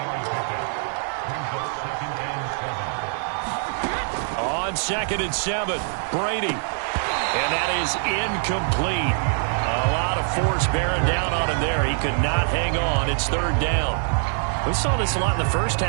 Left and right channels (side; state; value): left; silent; 63 dB below the other